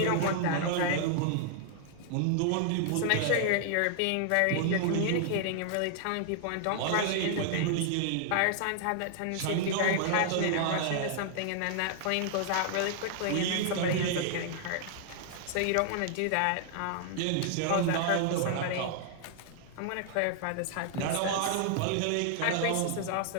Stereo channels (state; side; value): different; both; correlation 0.00